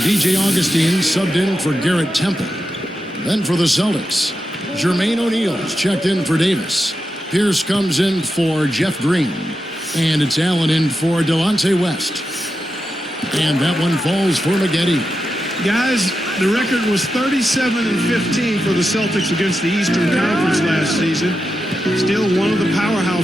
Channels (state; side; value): normal; both; correlation 0.89